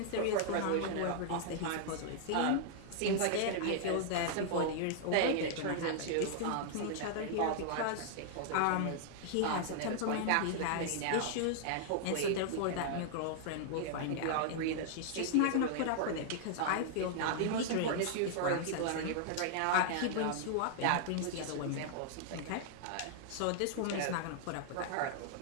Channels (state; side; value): different; both; correlation -0.01